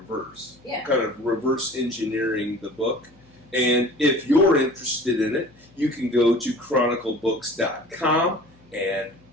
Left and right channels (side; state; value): left; noise; hum, 29 dB below the sound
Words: Yeah. Kind of reverse engineering the book. And if you're interested in it, you can go to chroniclebooks.com and